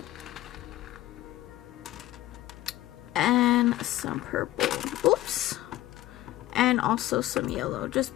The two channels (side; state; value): right; quieter; 15.4 dB